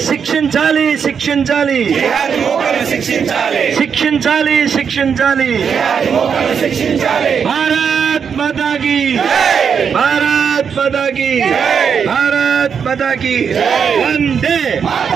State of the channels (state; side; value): quieter; left; 6.8 dB